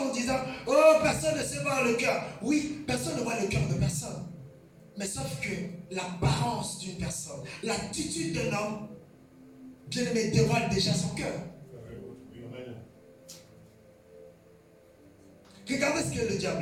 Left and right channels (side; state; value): both; identical; correlation 1.00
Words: en disant, oh, personne ne sait voir le cœur. Oui, personne ne voit le cœur de personne. Mais sauf que l'apparence d'une personne, l'attitude d'un homme, bien aimé, dévoile déjà son cœur. Regardez ce que le